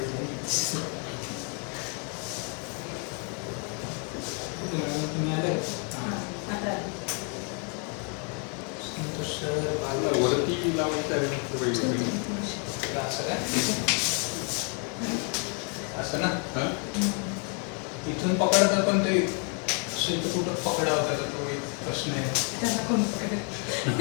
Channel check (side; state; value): right; quieter; 38.3 dB